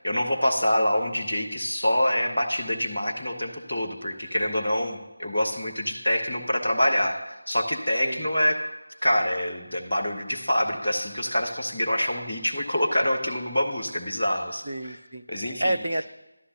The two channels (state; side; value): inverted; both; correlation -0.96